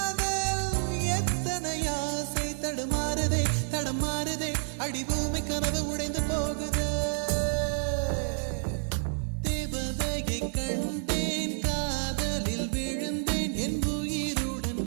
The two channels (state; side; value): silent; left; 58 dB below the other